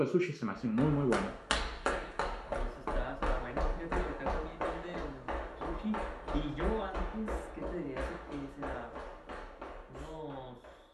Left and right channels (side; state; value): both; identical; correlation 1.00